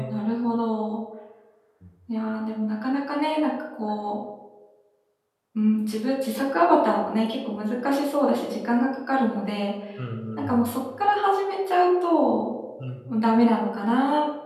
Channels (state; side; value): identical; both; correlation 1.00